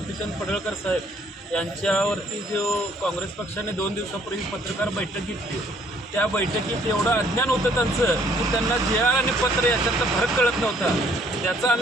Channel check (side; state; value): both; normal; correlation 0.63